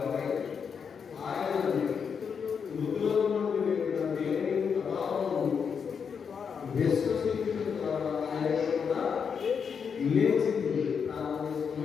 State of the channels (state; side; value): quieter; right; 6.5 dB